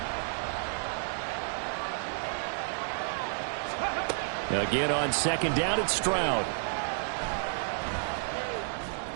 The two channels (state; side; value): silent; left; 57 dB below the other